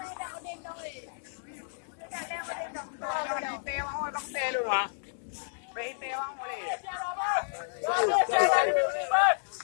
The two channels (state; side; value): silent; right; digital silence